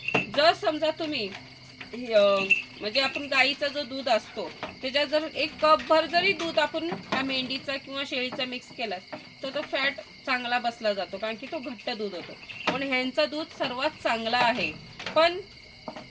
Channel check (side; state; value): both; identical; correlation 1.00